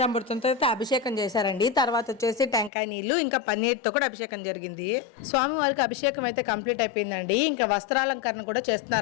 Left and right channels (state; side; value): drops out; right; at 2.7 s